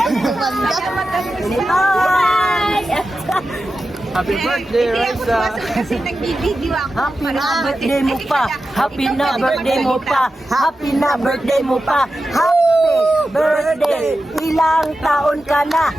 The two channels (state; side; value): normal; both; correlation 0.92